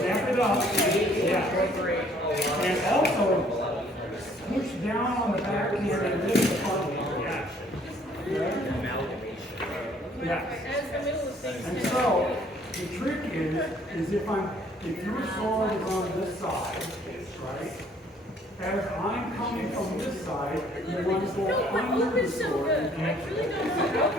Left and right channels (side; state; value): both; normal; correlation 0.60